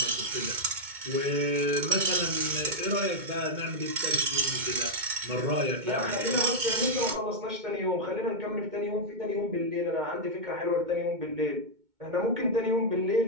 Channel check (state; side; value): late; left; 2.2 ms